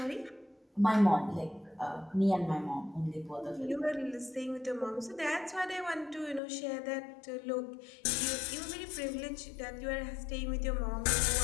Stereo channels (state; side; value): drops out; right; at 6.4 s